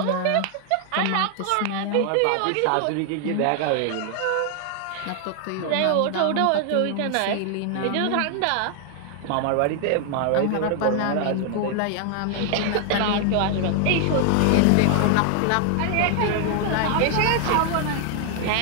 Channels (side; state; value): both; different; correlation 0.00